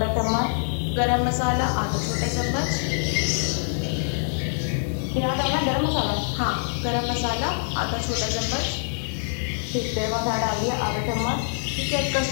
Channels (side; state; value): right; silent; digital silence